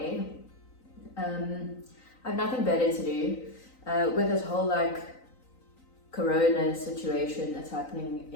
I have nothing better to do with this whole corona situation that's happening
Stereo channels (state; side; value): late; right; 3.9 ms